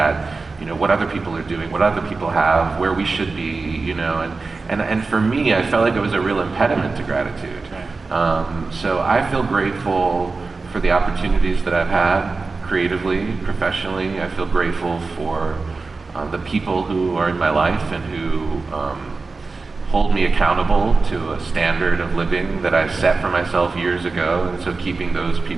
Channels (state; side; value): quieter; left; 4.0 dB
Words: what other people are doing, what other people have, where we should be, and for me, I felt like it was a real impediment to gratitude. So I feel grateful for the opportunities that I've had creatively, professionally. I feel grateful for the people who are in my life and who hold me accountable to a standard of living that I set for myself years ago. And so keeping those